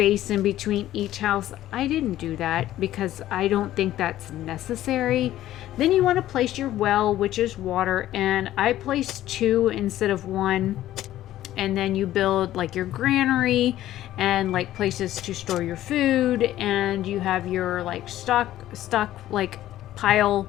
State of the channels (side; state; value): right; quieter; 13.7 dB